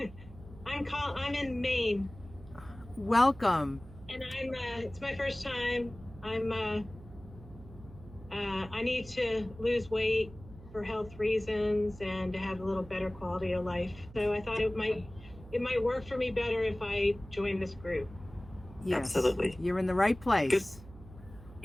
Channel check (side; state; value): right; noise; hum, 18 dB below the sound